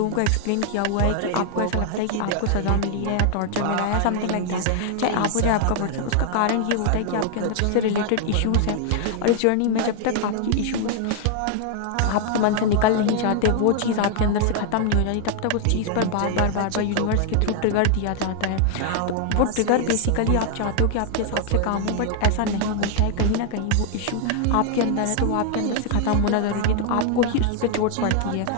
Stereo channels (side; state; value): both; different; correlation 0.00